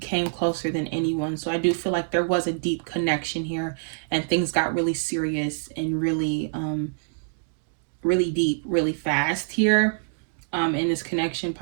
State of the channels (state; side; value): silent; left; digital silence